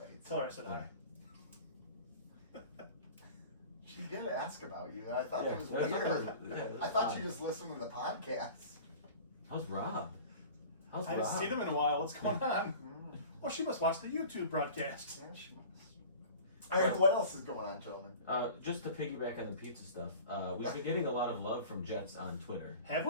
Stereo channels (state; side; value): inverted; both; correlation -0.41